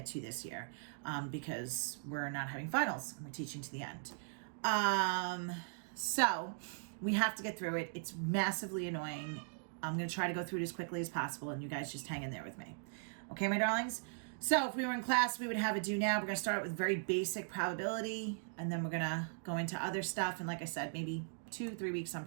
to this year, because we're not having finals and we're teaching to the end. So we have to get through it. It's massively annoying. I'm going to try to go through it as quickly as possible, and you guys just hang in there with me. Okay, my darlings? So if we were in class, we would have a do now. We're going to start with very basic probability, and then we're going to go into other stuff. And like I said, maybe 2-3 weeks on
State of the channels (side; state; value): left; silent; digital silence